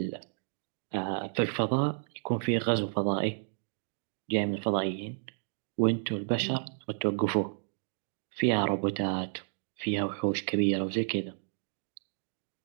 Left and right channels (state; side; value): silent; left; digital silence